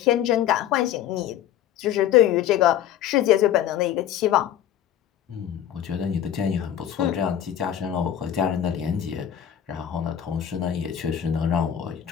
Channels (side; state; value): right; quieter; 10.5 dB